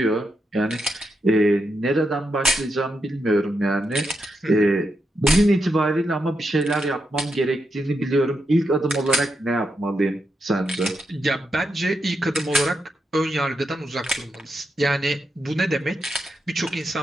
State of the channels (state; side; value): normal; both; correlation 0.84